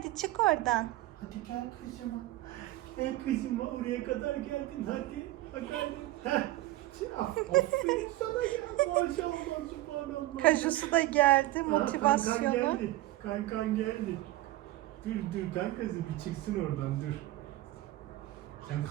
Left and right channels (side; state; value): left; quieter; 17.0 dB